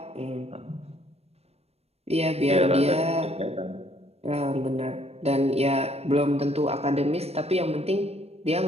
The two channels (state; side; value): late; left; 0.30 ms